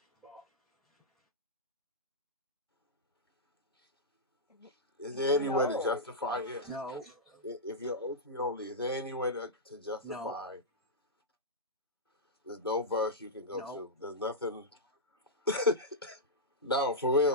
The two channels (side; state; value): both; normal; correlation -0.10